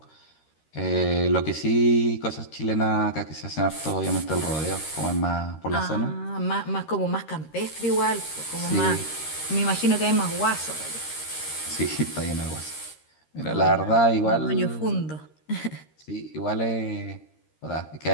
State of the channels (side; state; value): right; late; 13 ms